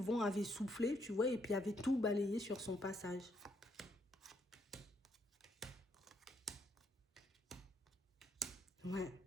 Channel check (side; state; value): both; normal; correlation 0.73